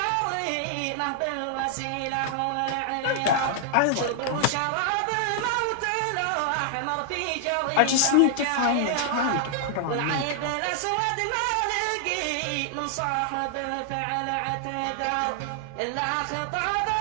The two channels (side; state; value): both; different; correlation -0.01